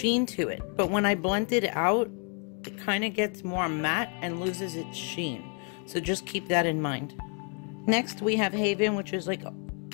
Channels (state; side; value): quieter; right; 38.5 dB